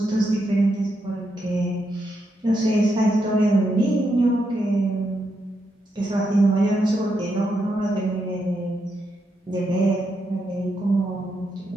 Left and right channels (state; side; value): normal; both; correlation 0.82